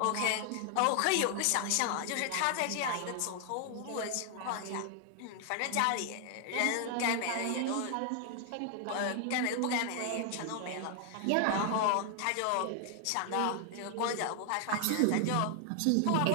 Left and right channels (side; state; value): both; different; correlation 0.00